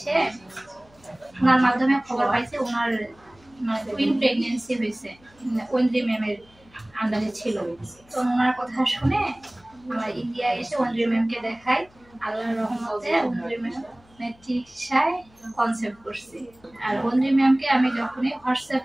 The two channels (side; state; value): left; noise; hum, 29 dB below the sound